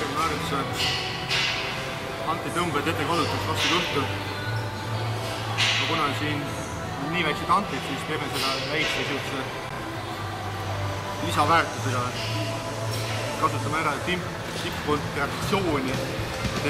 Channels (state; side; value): identical; both; correlation 1.00